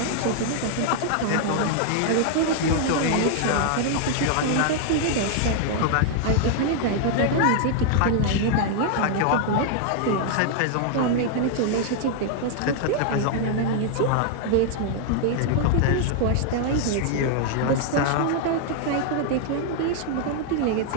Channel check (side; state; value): both; different; correlation 0.00